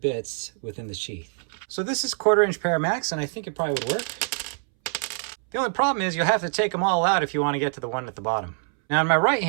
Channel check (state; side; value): silent; left; 62 dB below the other